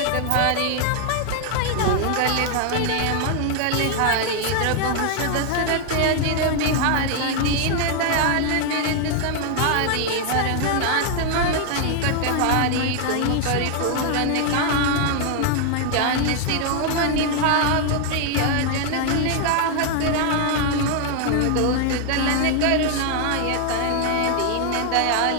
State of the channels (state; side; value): different; both; correlation 0.00